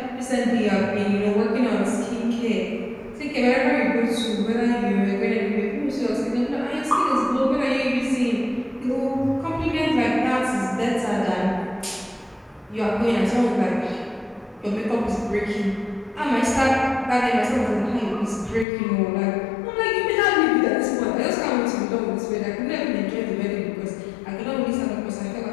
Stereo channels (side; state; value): right; drops out; at 18.7 s